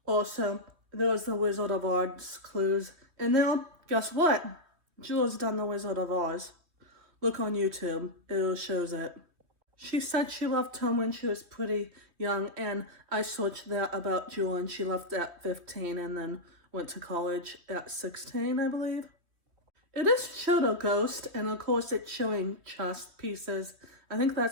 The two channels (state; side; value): late; left; 3.2 ms